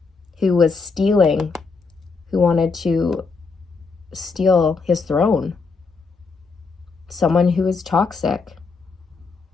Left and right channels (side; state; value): right; quieter; 4.5 dB